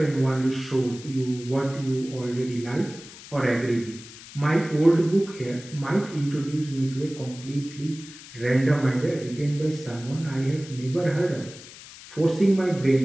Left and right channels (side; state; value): left; noise; hiss, 17 dB below the sound